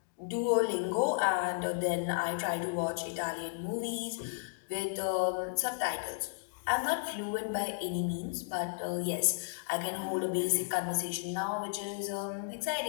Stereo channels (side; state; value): right; silent; digital silence